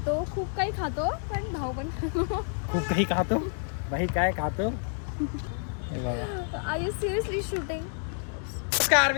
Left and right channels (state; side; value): silent; right; 59 dB below the other